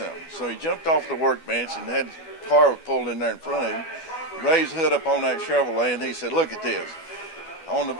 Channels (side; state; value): right; late; 12 ms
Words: So he jumped off the workbench and had the car pulled in there in front of him, raised the hood up on that Chevrolet, and he said, "Look at this. On the